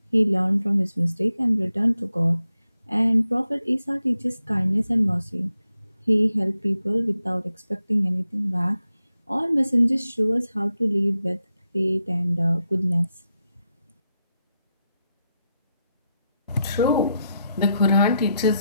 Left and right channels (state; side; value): inverted; both; correlation -0.85